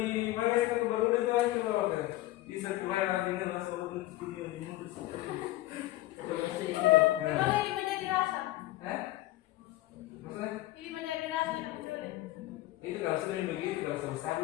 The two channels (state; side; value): quieter; right; 17.1 dB